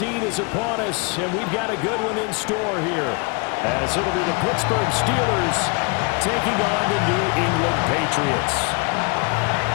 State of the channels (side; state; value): right; quieter; 30.9 dB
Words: is upon us, and we've got a good one in store here, as it'll be the Pittsburgh Steelers taking on the New England Patriots.